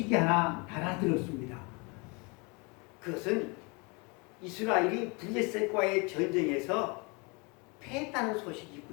하나 달아들었습니다. 그것은 이스라엘이 블레셋과의 전쟁에서 패했다는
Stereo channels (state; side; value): quieter; right; 30.2 dB